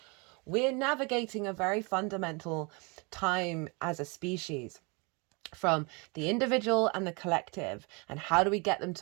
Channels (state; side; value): quieter; left; 30.6 dB